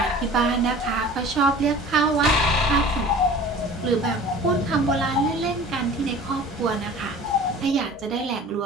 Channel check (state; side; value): normal; both; correlation 0.43